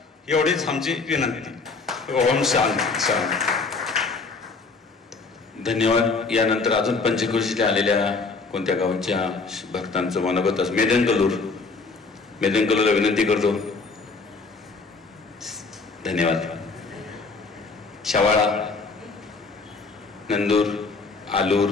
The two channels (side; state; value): right; quieter; 4.2 dB